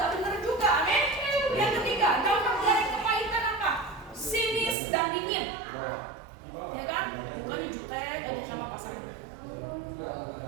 benar juga, amin. Yang ketiga, dampak dari kepahitan apa? Sinis dan dingin. Ya kan? Bukannya jutek aja sama pasangan.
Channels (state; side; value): drops out; left; at 4.8 s